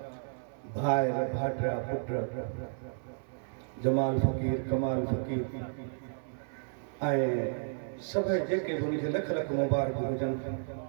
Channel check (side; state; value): left; silent; 56 dB below the other